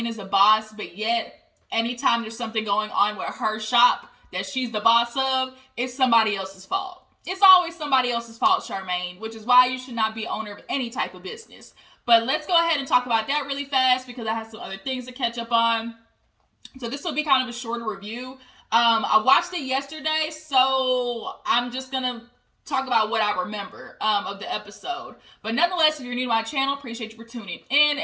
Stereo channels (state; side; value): identical; both; correlation 1.00